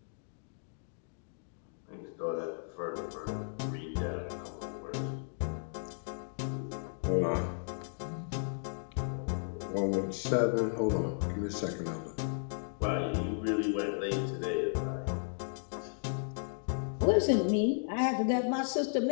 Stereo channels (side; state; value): right; silent; digital silence